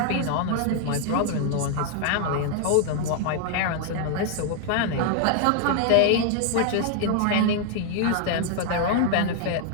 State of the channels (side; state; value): both; different; correlation 0.00